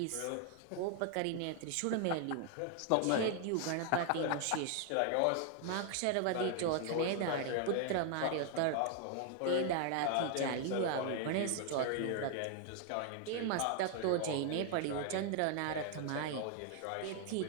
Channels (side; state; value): both; different; correlation 0.00